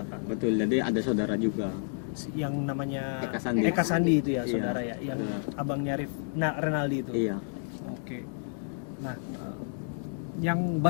betul. Jadi ada saudara juga. Yang namanya Eka Sandi. Eka Sandi itu ya, Iya, saudara ya, yang saudara. abangnya Renaldi itu. Iya. Oke. Nah, yang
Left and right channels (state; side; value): silent; right; digital silence